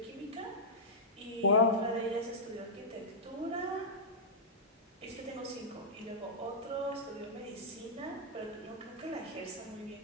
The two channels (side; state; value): both; normal; correlation -0.12